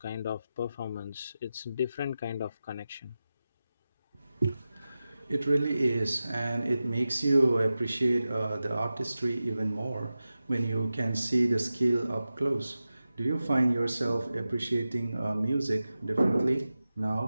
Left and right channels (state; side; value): inverted; both; correlation -0.93